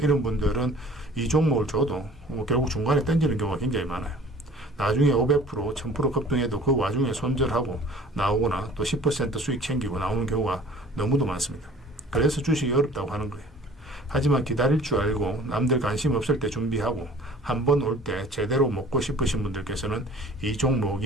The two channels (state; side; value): normal; both; correlation 0.48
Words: 분들은 이 종목을 줘도 결국 중간에 던지는 경우가 굉장히 많아요. 나중에 500%, 1000% 급등해도 그 와중에 손절하고 나오거나 또 10% 수익 챙기고 나오는 경우가 너무도 많습니다. 그래서 주식이 어렵다고 하는 거예요. 하지만 기다릴 줄 알고 남들 관심 없을 때 준비하고 한 번 올 때 제대로 먹고 싶으신 분들께서는 이